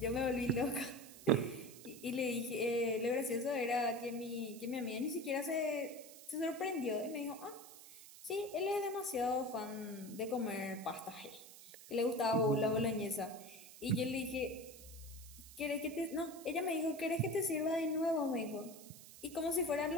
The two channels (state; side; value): noise; right; hiss, 17 dB below the sound